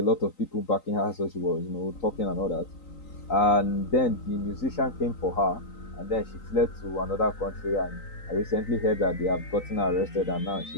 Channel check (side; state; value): right; late; 3.9 ms